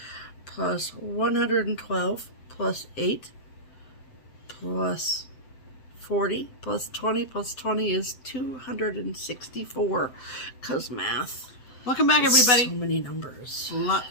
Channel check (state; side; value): late; right; 7.7 ms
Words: plus 112 plus 8 plus 40 plus 20 is 264. Because math. Welcome back, everybody. So many numbers.